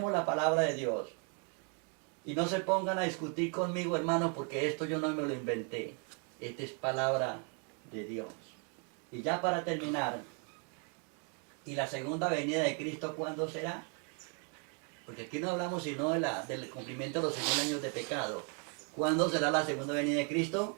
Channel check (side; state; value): left; quieter; 39.0 dB